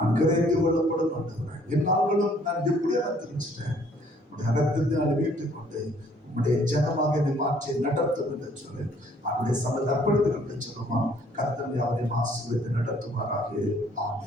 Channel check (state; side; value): normal; both; correlation 0.61